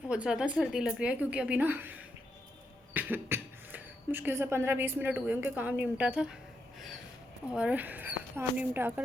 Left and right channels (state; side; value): normal; both; correlation 0.82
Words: बहुत ज़्यादा सर्दी लग रही है, क्योंकि अभी ना मुश्किल से 15-20 मिनट हुए उनके काम निपटा था, और काम निपटा